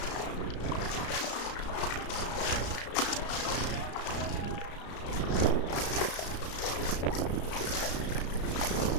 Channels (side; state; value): right; late; 34 ms